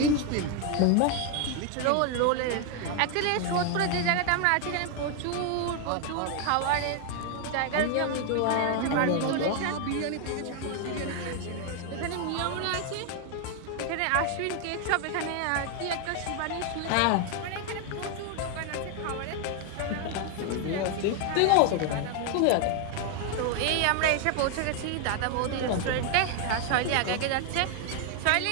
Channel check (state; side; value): different; both; correlation 0.00